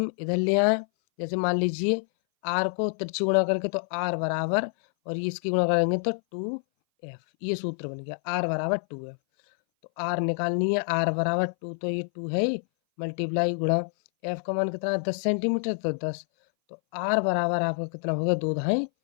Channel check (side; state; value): right; silent; 59 dB below the other